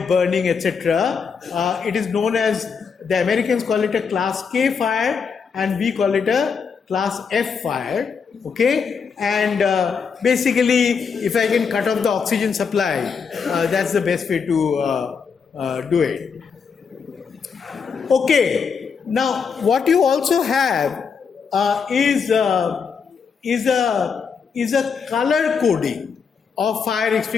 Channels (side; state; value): right; quieter; 5.9 dB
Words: burning, etc. It is known as, the Americans call it a class K fire and we call it a class F fire. Okay, and basically if I can cut off the oxygen supply, that's the best way to do it. Okay, now what you also have is a color coding of fire